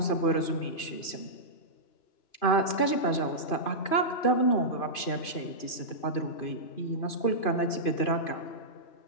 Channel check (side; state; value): right; late; 2.5 ms